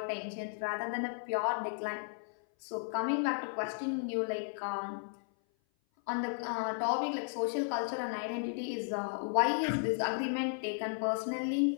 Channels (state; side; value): silent; right; 55 dB below the other